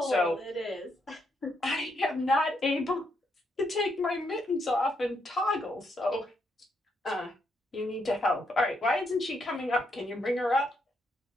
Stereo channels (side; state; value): both; normal; correlation 0.78